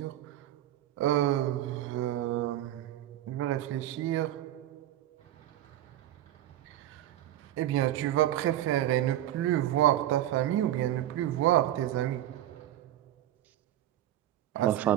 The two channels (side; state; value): left; quieter; 13.2 dB